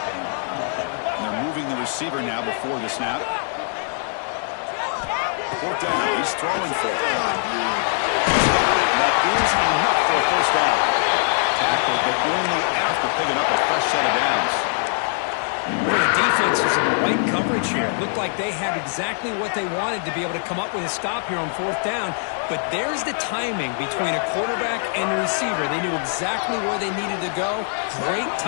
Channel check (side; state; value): right; silent; digital silence